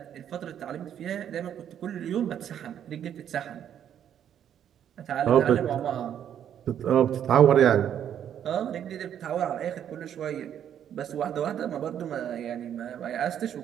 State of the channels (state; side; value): quieter; left; 9.6 dB